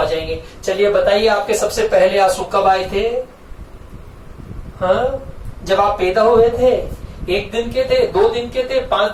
जाएंगे। चलिए बताइए आपके सबसे पहले आंसू कब आए थे? हाँ, जब आप पैदा हुए थे। 1 दिन के थे, 2 दिन के थे, 5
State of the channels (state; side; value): identical; both; correlation 1.00